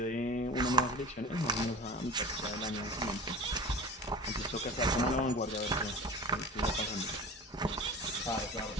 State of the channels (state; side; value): normal; both; correlation 0.36